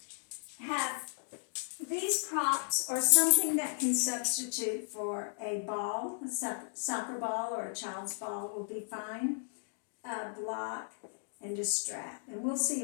Have these props or something that can substitute for a ball, a soccer ball or a child's ball will be fine. Block and a strap. And we'll see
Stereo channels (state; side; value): silent; right; digital silence